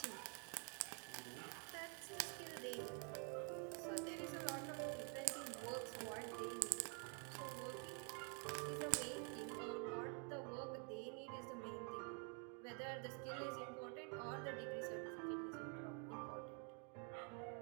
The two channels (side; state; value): left; quieter; 39.5 dB